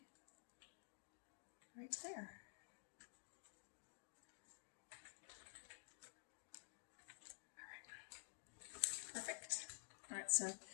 right there. Perfect. All right, so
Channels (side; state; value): right; silent; digital silence